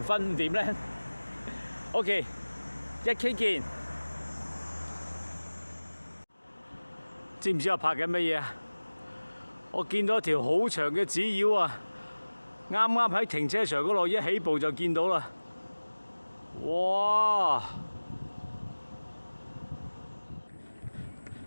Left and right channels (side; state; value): both; inverted; correlation -1.00